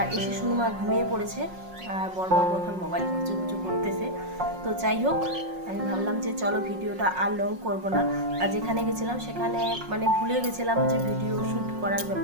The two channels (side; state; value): left; late; 5.5 ms